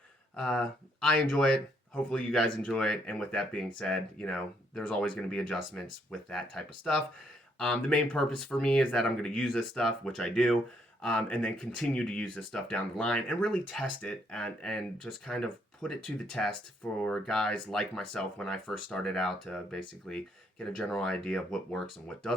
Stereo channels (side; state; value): both; normal; correlation 0.72